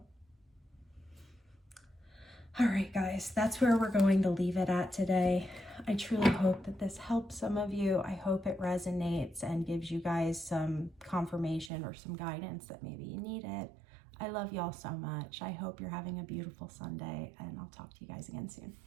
All right, guys, that's where we're going to leave it at today. I truly hope that this helps some of you. I hope it resonates and gives you guys some confirmation or some guidance that maybe you need it. I love y'all so much. I hope you're having a beautiful Sunday, and I'll talk to you guys again soon.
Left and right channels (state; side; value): drops out; left; at 11.7 s